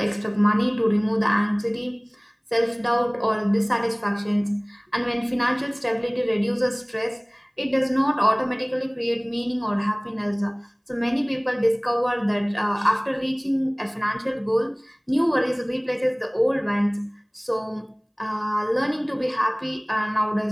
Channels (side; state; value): both; identical; correlation 1.00